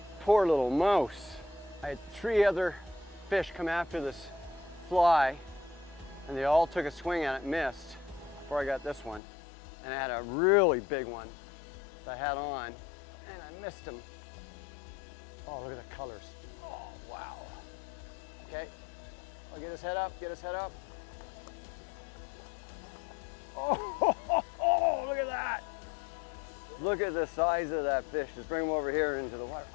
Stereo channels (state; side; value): drops out; right; at 9.2 s